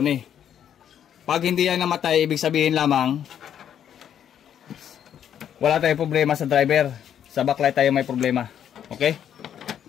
Pag hindi yan namatay, ibig sabihin lamang, wala tayong problema sa driver. Sa backlight tayo may problema. Okay?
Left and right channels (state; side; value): quieter; right; 9.5 dB